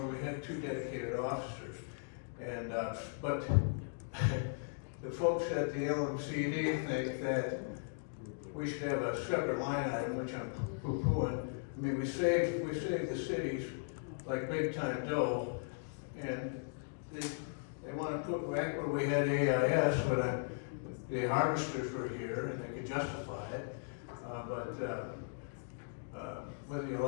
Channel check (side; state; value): right; silent; digital silence